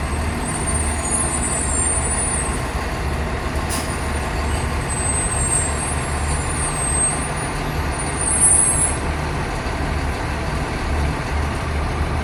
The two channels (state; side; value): identical; both; correlation 1.00